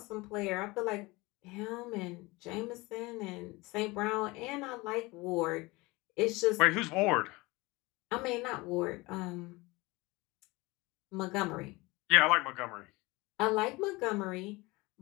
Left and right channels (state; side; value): quieter; right; 23.0 dB